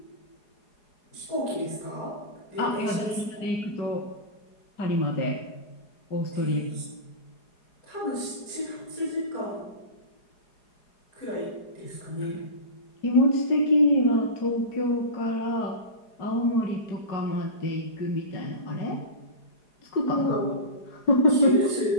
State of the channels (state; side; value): late; right; 4.8 ms